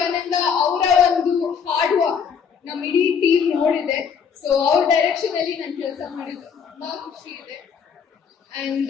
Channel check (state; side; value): quieter; right; 6.8 dB